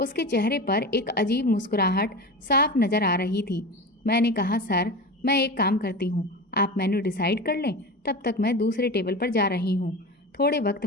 चेहरे पर एक अजीब मुस्कुराहट साफ नजर आ रही थी। मैंने कहा सर, मैं एक काम करती हूँ, आप मेन्यू डिसाइड कर लें, तब तक मैं दूसरे टेबल पर जा रही हूँ। थोड़े वक्त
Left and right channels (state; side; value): normal; both; correlation 0.28